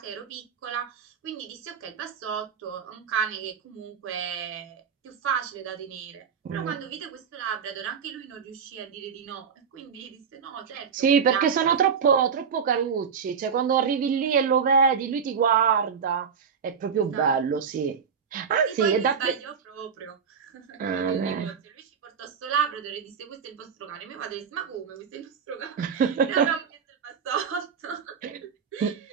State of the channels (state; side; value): quieter; left; 6.7 dB